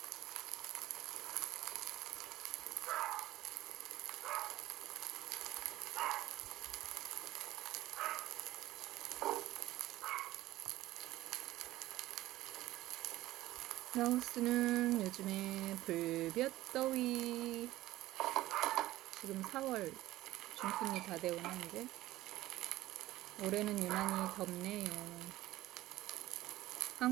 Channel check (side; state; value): left; quieter; 16.2 dB